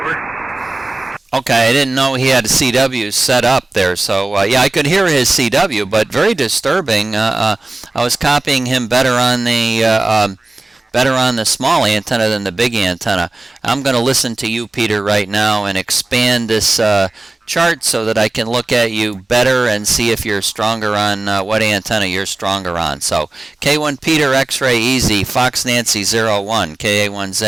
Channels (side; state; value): left; quieter; 3.0 dB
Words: Over. Okay, I didn't know he had a CW set up there, so yeah, I could hear his CW, but very disturbing. I was copying him better on the small antenna than the big antenna. I'm going to listen to you, Peter, right now and expand this chart so that I can look at you better and see if you're stronger on what antenna you're stronger on. So K1 Peter X-Ray Easy, Fox Nancy 01,